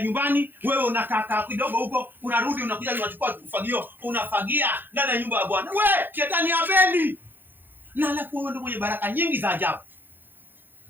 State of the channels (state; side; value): late; left; 0.094 ms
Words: nyumbani, wewe unakaa kidogo huko, unarudi unakuja unachukua ufagio, unafagia ndani ya nyumba ya Bwana. Shetani hapendi. Na alafu wewe ndio mwenye baraka nyingi za ajabu.